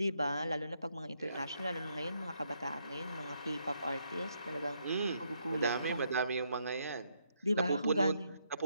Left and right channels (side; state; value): both; inverted; correlation -0.76